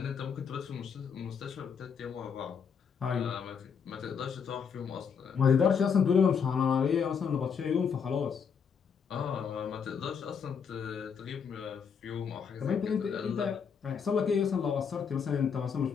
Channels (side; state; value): right; quieter; 6.7 dB